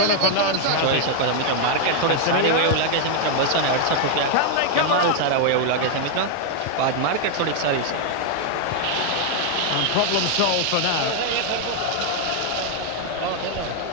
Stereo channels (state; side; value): different; both; correlation 0.00